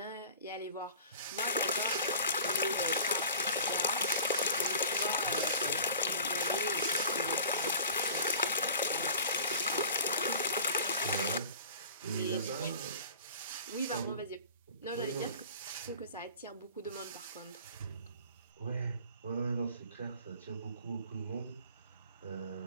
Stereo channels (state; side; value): inverted; both; correlation -0.44